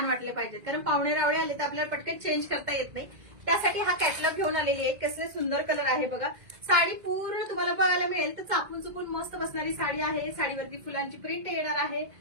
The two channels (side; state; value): left; late; 2.1 ms